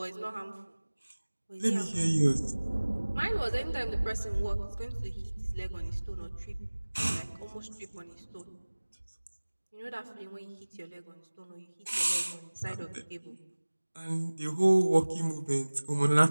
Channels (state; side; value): inverted; both; correlation -1.00